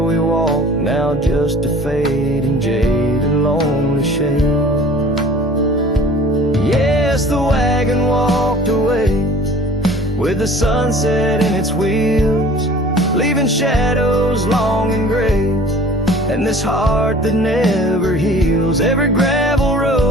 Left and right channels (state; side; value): normal; both; correlation 0.47